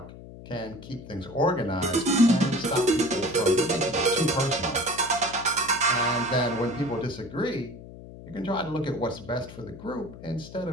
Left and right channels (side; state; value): left; noise; hum, 15 dB below the sound